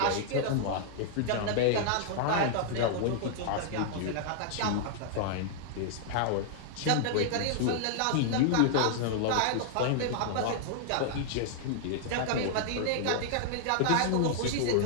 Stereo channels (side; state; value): both; different; correlation -0.01